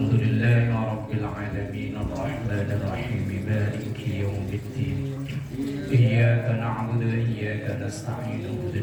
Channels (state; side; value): identical; both; correlation 1.00